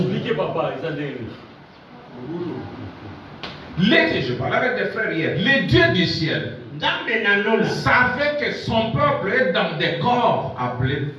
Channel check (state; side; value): identical; both; correlation 1.00